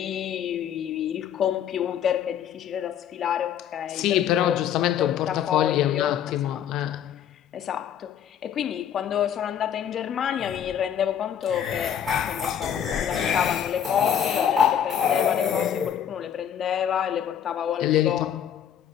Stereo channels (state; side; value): quieter; right; 9.2 dB